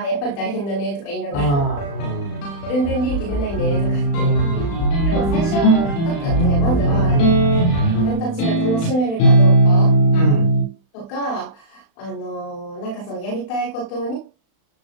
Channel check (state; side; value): late; right; 35 ms